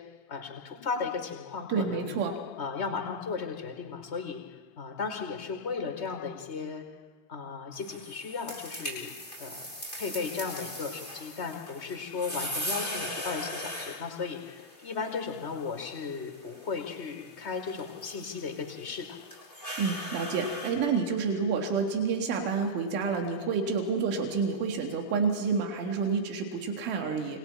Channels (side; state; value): right; late; 3.1 ms